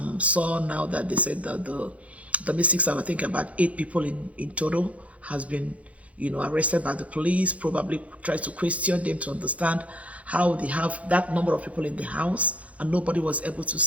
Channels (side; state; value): left; late; 0.066 ms